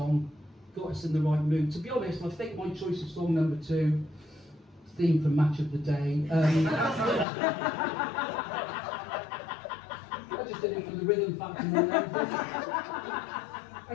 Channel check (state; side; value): drops out; right; at 7.2 s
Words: got us in the right mood. To be honest, I think my choice of song number 2, theme for Match of the Day. I just did it for the rhythm factor more than anything. I